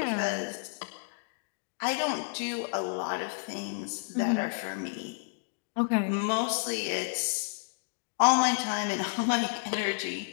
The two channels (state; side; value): silent; right; digital silence